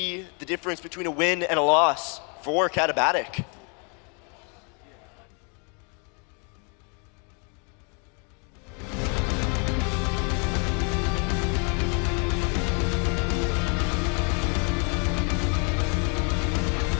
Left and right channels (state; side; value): quieter; right; 36.1 dB